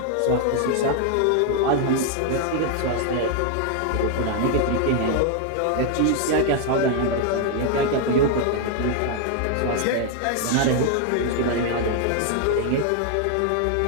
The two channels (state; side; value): different; both; correlation 0.00